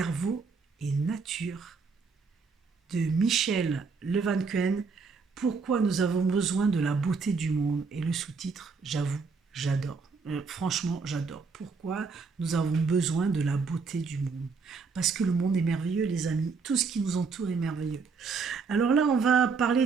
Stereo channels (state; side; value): quieter; left; 4.9 dB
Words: et nature de Michel Levancuen. Pourquoi nous avons besoin de la beauté du monde. Et le sous-titre, j'avoue, j'adore. Franchement, j'adore. Pourquoi nous avons besoin de la beauté du monde. Parce que le monde est merveilleux, les amis. Tout ce qui nous entoure est merveilleux. Alors là, on va parler